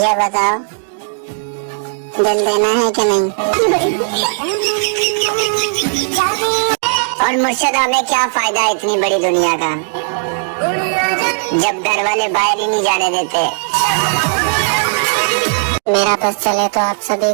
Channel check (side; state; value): left; silent; digital silence